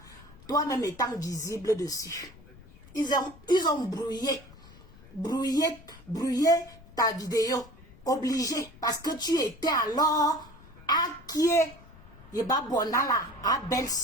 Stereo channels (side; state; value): left; noise; rumble, 22 dB below the sound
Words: toi-même étant visible dessus. Ils ont brouillé ta vidéo. Obligé. Parce que tu étais alors à qui est Yeba Bonala, à